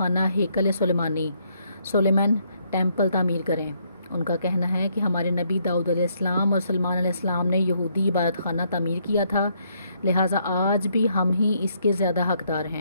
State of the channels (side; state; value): both; inverted; correlation -0.72